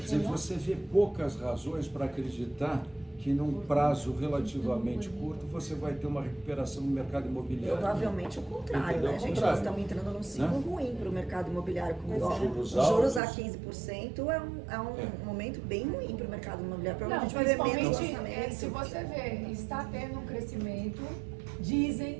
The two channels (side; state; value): left; drops out; at 13.2 s